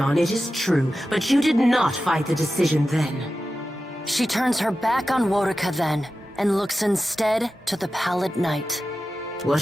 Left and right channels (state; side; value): normal; both; correlation 0.93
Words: it is true, but you did not fight the decision then. She turns her back on Wodica then, and looks instead to the pallid night.